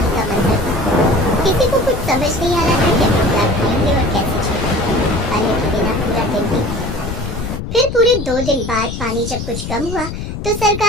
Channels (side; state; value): left; noise; rumble, 7 dB below the sound